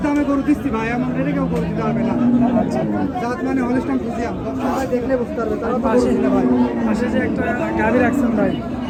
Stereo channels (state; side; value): identical; both; correlation 1.00